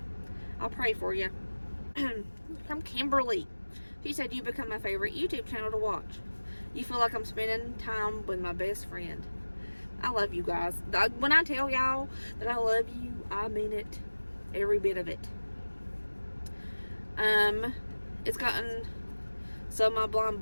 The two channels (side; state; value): both; inverted; correlation -1.00